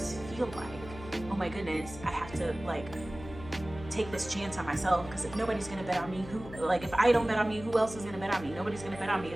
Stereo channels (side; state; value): left; noise; hum, 14 dB below the sound